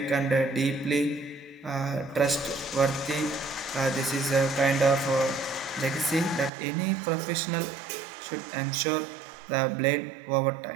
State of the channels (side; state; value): left; drops out; at 6.5 s